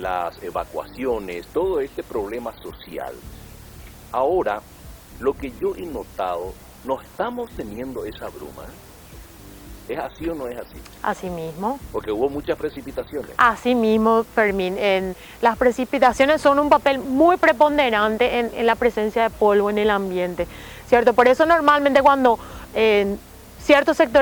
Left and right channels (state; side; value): identical; both; correlation 1.00